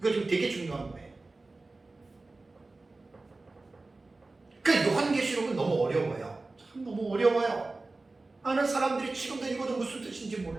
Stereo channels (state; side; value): quieter; left; 3.3 dB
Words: 지금 되게 중요한 거예요. 그 요한계시록은 너무 어려워요. 참 너무 어려워요. 많은 사람들이 지금도 읽어도 무슨 뜻인지